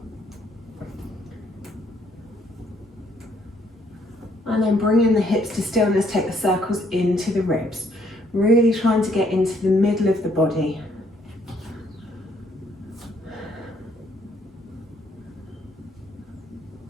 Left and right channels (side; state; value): both; normal; correlation 0.68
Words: And then bringing the hips to stillness, take the circles into the ribs. Really trying to get into the middle of the body.